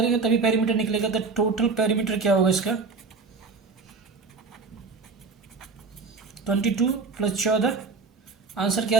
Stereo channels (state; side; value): quieter; left; 4.4 dB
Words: तभी पेरीमीटर निकलेगा, तो टोटल पेरीमीटर क्या होगा इसका 22 + 14, आंसर क्या